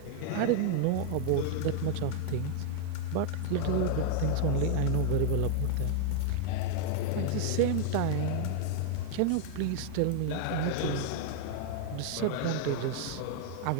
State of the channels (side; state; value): both; different; correlation 0.00